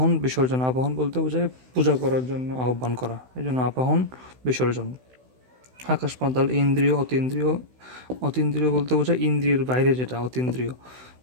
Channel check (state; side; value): late; left; 16 ms